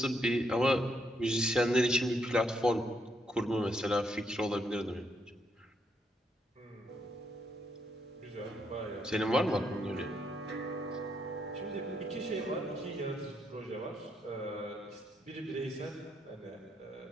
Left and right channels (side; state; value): both; normal; correlation 0.76